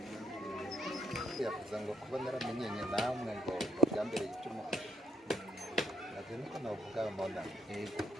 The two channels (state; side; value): normal; both; correlation 0.74